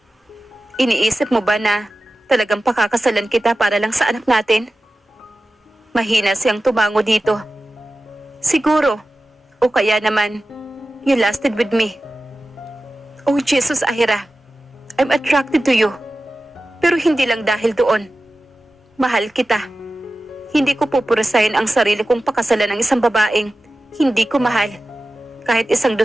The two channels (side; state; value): both; normal; correlation 0.95